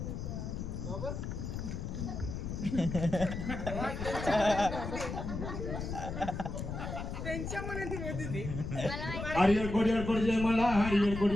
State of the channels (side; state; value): left; noise; rumble, 5 dB below the sound